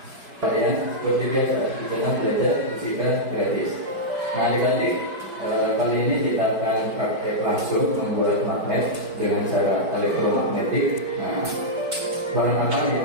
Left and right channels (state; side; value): late; left; 4.9 ms